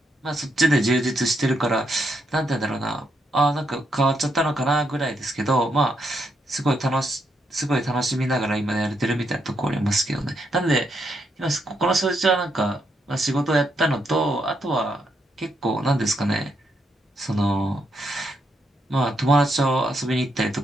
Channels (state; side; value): normal; both; correlation 0.78